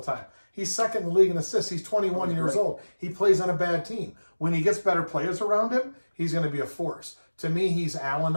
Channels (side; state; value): both; inverted; correlation -1.00